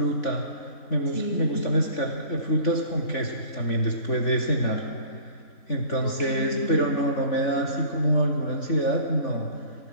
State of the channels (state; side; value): late; right; 3.5 ms